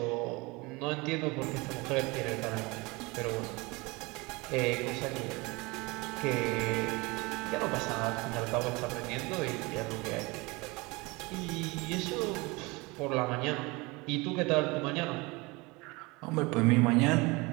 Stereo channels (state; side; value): quieter; left; 25.0 dB